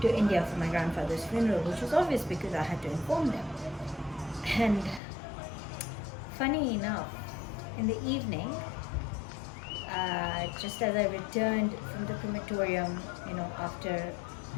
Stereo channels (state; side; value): drops out; right; at 5.0 s